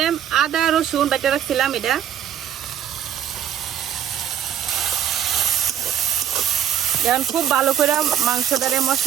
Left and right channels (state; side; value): quieter; left; 9.8 dB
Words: আদা রসুন বেটে রাখছিলাম, এটা এখন খুব ভালো করে মাংসটারে